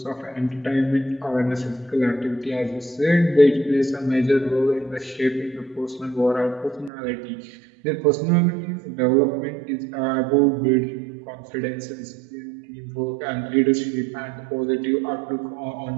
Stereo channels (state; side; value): drops out; left; at 6.9 s